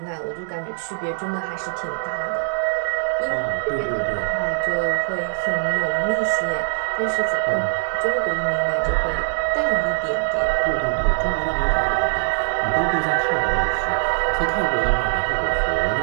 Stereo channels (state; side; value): silent; left; digital silence